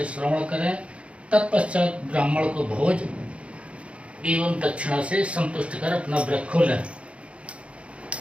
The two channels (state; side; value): late; left; 0.061 ms